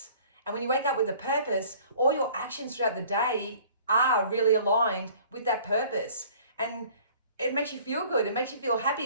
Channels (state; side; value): inverted; both; correlation -0.52